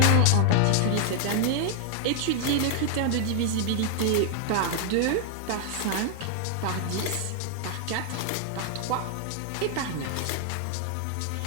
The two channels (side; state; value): both; different; correlation 0.00